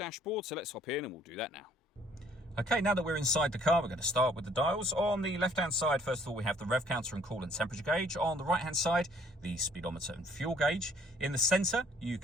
so let's hop in and we'll do that now. Okay, now that we're inside the car, we're going to start with the dials. On the left-hand side, first of all, we have the rev counter and coolant temperature gauge. On the right-hand side, the speedometer and fuel gauge. In the centre, you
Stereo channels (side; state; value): both; normal; correlation 0.60